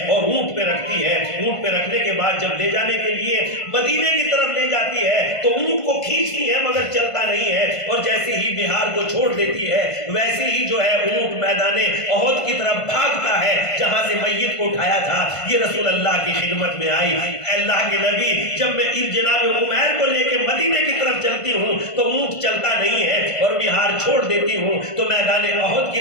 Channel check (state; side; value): late; right; 1.5 ms